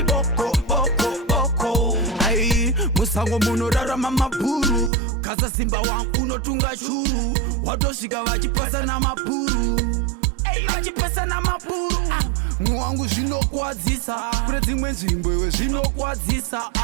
boko Ay, musango muno rara mamapuru Kaza simba wangu unotunga churu Watoshika vachipasa na mapuru vachipasa na mapuru Mwangu zvinokwadzisa Kune dzimwe nzvimbo iwe zvinokwadzisa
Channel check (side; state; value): left; drops out; at 4.9 s